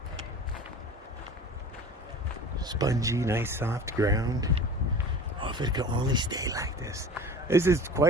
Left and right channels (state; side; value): normal; both; correlation 0.39